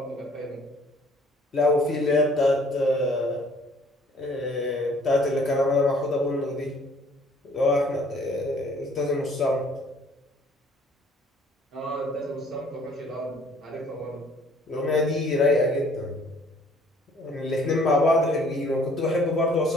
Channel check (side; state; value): both; normal; correlation 0.57